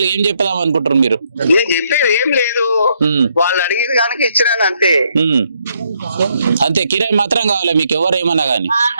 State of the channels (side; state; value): both; inverted; correlation -0.73